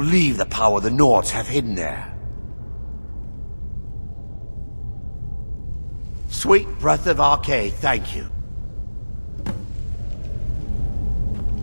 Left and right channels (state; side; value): inverted; both; correlation -1.00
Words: the power the Nords have hidden there. Sweet breath of Arcade, thank you.